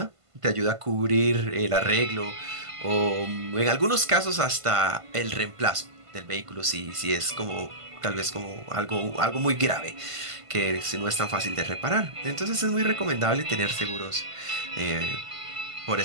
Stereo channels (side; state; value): left; late; 1.5 ms